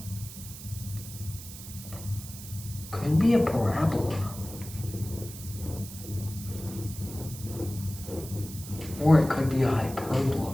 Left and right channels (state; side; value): noise; right; hiss, 13 dB below the sound